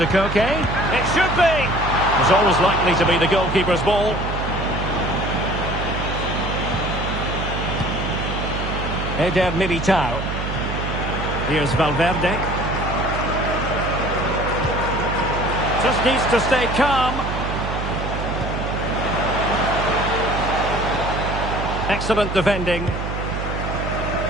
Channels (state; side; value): noise; right; hum, 4 dB below the sound